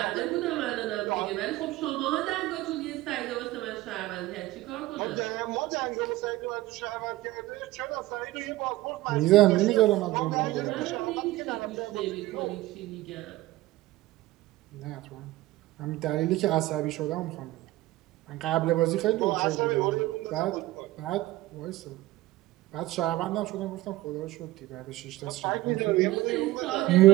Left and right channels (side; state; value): left; quieter; 17.4 dB